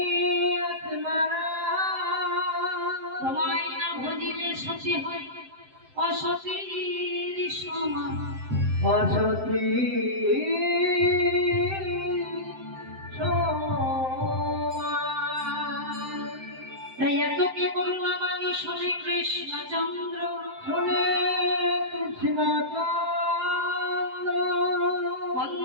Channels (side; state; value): left; late; 7.7 ms